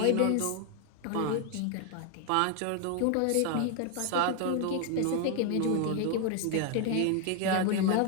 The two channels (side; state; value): both; different; correlation 0.00